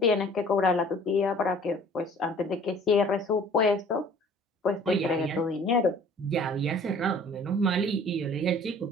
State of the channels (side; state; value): both; normal; correlation 0.50